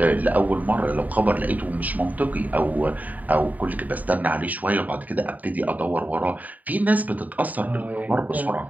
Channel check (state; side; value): late; left; 0.076 ms